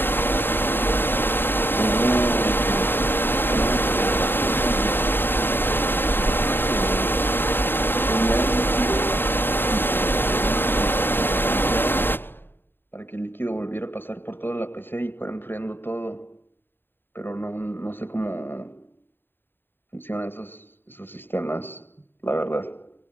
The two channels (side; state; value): right; late; 0.099 ms